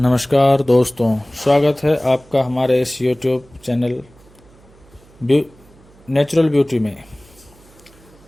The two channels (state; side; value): noise; right; hum, 27 dB below the sound